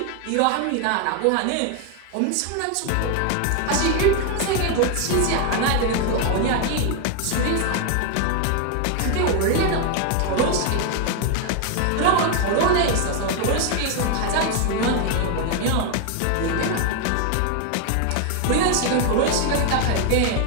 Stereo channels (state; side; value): different; both; correlation 0.01